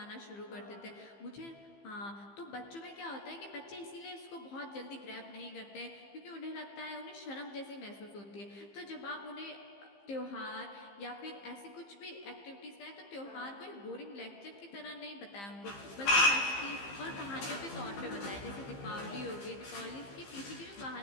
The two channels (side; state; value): right; late; 15 ms